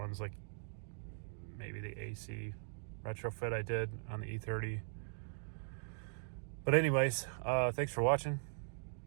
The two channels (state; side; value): silent; left; digital silence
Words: like maybe the AC retrofit I did on the E30. But anyways, thanks for watching.